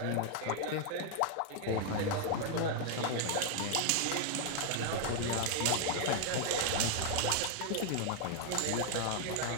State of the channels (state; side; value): different; both; correlation 0.00